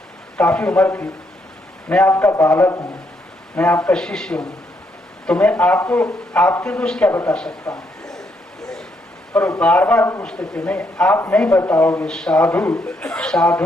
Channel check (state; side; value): normal; both; correlation 0.75